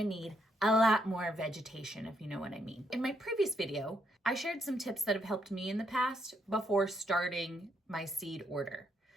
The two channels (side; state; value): both; normal; correlation 0.76